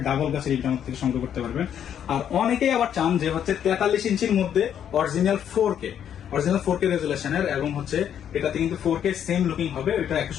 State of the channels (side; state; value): right; quieter; 9.3 dB